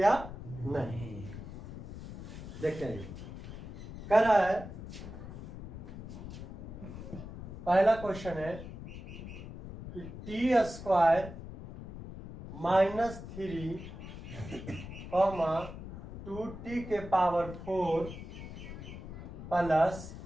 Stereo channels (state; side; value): noise; left; rumble, 11 dB below the sound